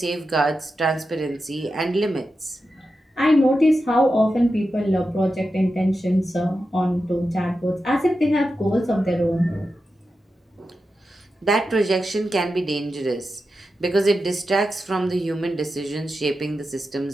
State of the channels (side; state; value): both; normal; correlation 0.90